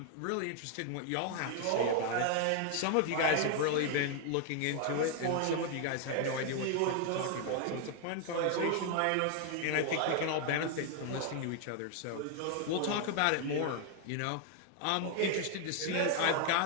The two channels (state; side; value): different; both; correlation 0.00